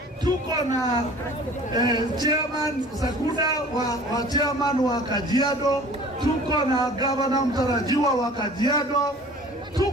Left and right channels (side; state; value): both; normal; correlation 0.47